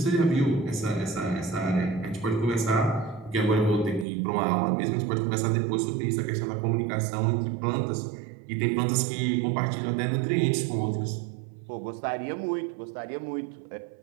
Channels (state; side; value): drops out; left; at 4.0 s